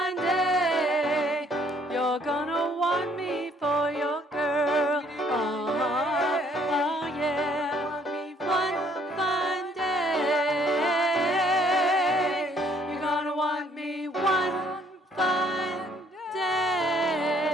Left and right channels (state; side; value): normal; both; correlation 0.63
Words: day, you're gonna want me for your girl. Oh yeah. One fine day, you're gonna want me one fine day.